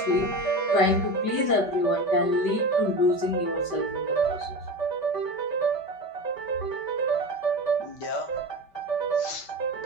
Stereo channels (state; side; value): late; right; 5.1 ms